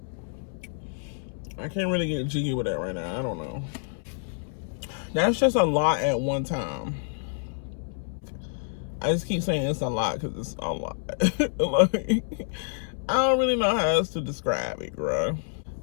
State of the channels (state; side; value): silent; right; 60 dB below the other